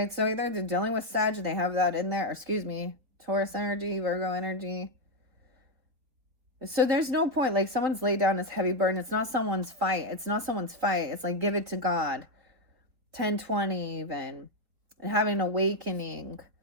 so either they're dealing with Sag, they have that in there, or excuse me, Taurus energy, Virgo energy. So there's no point, like someone's laid down this heavy burden. It's not someone's fight. It's not someone's fight. It's like, give it to God. 10-20 even. And having an awakening.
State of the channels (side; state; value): left; late; 4.0 ms